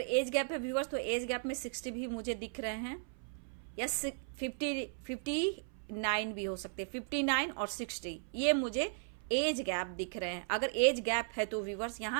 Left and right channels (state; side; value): silent; left; 54 dB below the other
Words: गैप है व्यूवर्स तो एज गैप में 60 भी मुझे दिख रहे हैं, या 59 भी हो सकते हैं, 59 और 60 ये मुझे एज गैप दिख रहे हैं। अगर एज गैप है तो व्यूवर्स